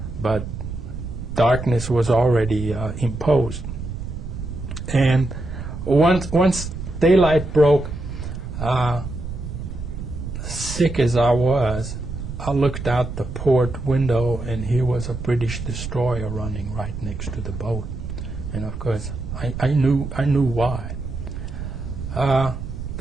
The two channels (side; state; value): right; noise; rumble, 7 dB below the sound